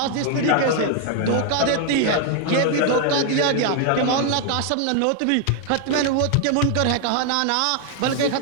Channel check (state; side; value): different; both; correlation 0.00